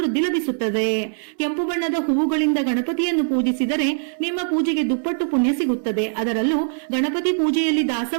ಲಭಿಸುತ್ತದೆ. ಕೆಂಪು ಬಣ್ಣದ ಹೂವುಗಳಿಂದ ಗಣಪತಿಯನ್ನು ಪೂಜಿಸಿದರೆ ನಿಮ್ಮ ಪೂಜೆಗೆ ದುಪ್ಪಟ್ಟು ಪುಣ್ಯ ಸಿಗುತ್ತದೆ. ಅದರಲ್ಲೂ ಗಣಪತಿ ಪೂಜೆಯಲ್ಲಿ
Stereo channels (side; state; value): left; silent; 64 dB below the other